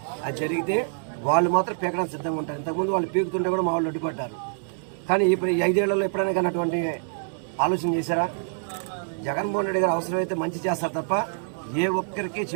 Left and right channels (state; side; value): silent; left; digital silence